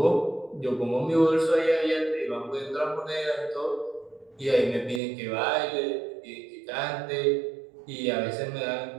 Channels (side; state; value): left; drops out; at 5.0 s